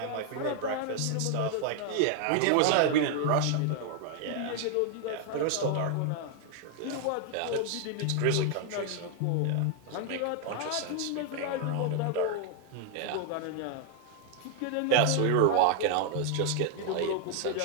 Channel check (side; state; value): both; different; correlation 0.00